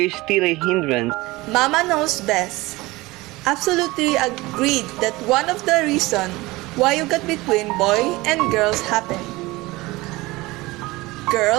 is still a hindrance? Mama knows best. Absolutely agreed that one of the reasons why you got between boy and girls happened.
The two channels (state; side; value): quieter; left; 20.9 dB